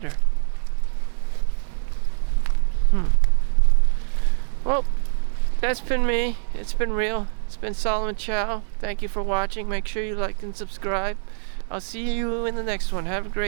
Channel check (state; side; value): silent; left; digital silence